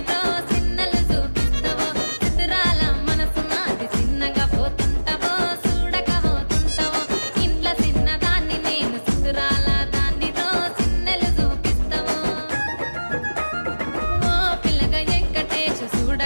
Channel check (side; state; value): both; inverted; correlation -1.00